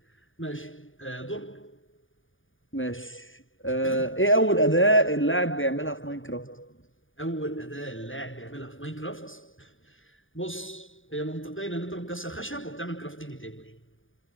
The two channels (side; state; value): right; late; 0.58 ms